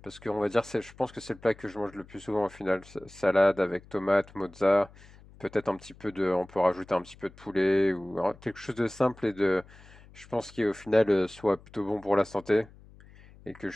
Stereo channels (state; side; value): noise; left; hum, 23 dB below the sound